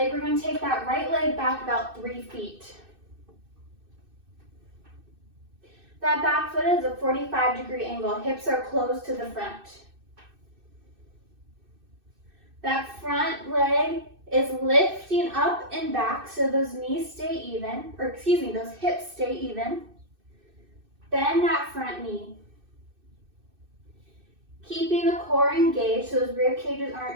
we're going to take that right leg back about 3 feet. That back foot is a 45-degree angle. Hips are close to the front. That front leg is lifting up and back so those knees stay even, or excuse me, those hips stay even. Bend that front knee. Keeping the core engaged so those rib cages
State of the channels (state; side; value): late; left; 2.6 ms